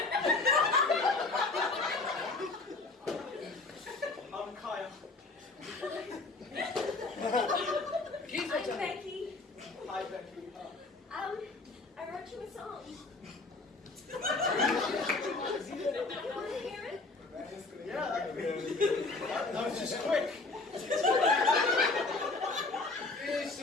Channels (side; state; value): right; quieter; 3.5 dB